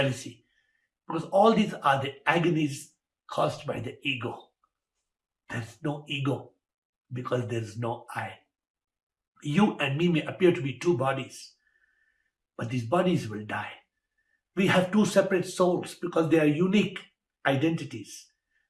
Because all these are the agonies caused by the ego. There is no ego because there is no I. You and me may appear to be two bodies, but these bodies will die. We have two separate souls because they are unique identities,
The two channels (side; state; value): both; identical; correlation 1.00